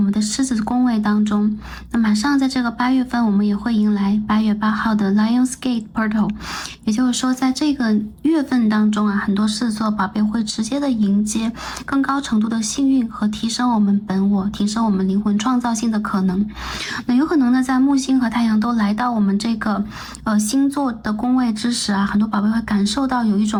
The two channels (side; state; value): both; identical; correlation 1.00